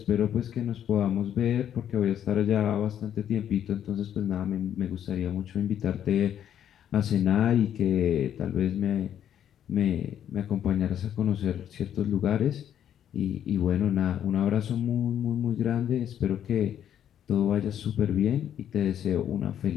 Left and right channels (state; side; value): quieter; right; 10.0 dB